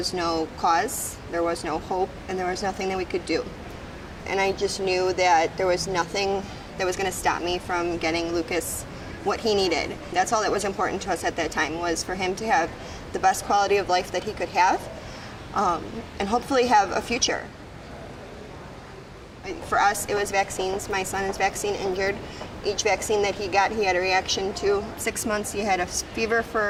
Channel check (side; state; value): both; identical; correlation 1.00